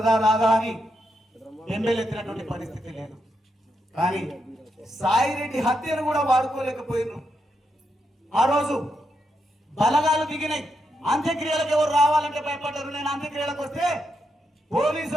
రాదా అని ఎమ్మెల్యేతినటువంటి పరిస్థితి లేదు. కానీ సాయిరెడ్డి హత్యను కూడా వాడుకోలేకపోయినారు. ఆ రోజు బలగాలు దిగినాయి. అంత్యక్రియలకు ఎవరు రావాలంటే భయపడ్డారు. నేను అంత్యక్రియలకు వస్తే పోలీసు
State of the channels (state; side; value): normal; both; correlation 0.82